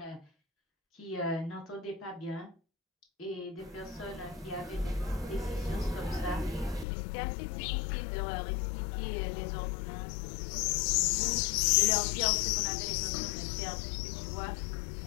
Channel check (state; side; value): drops out; right; at 6.9 s